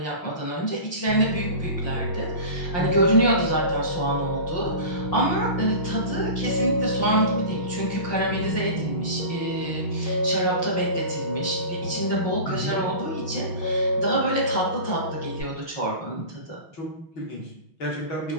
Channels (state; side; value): late; right; 5.7 ms